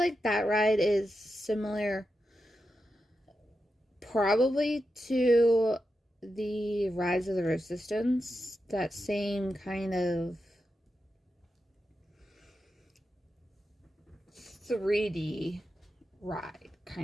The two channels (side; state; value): both; normal; correlation 0.89